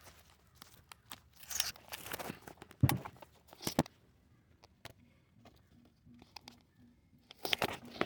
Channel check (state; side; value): identical; both; correlation 1.00